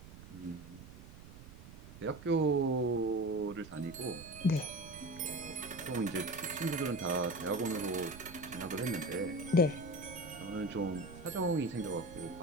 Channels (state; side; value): noise; right; rumble, 16 dB below the sound